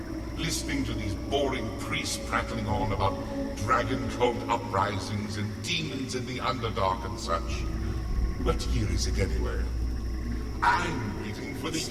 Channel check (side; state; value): both; identical; correlation 1.00